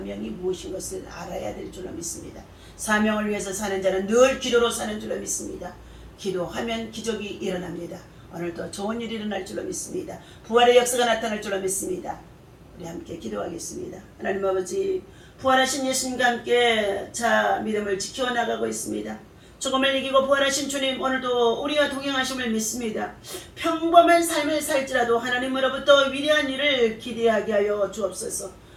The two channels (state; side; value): identical; both; correlation 1.00